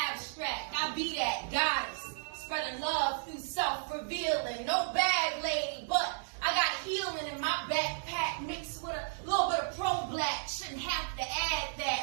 abstract. I be that goddess. Spreading love through self-revealing. No bag lady, but I got healing in my backpack mixed with a little bit of pro-black. Shouldn't have to add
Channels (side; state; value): left; silent; digital silence